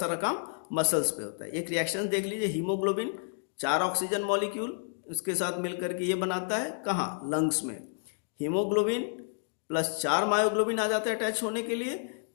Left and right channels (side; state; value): right; silent; digital silence